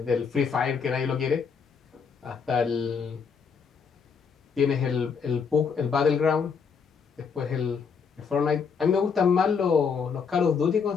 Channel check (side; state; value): right; quieter; 6.0 dB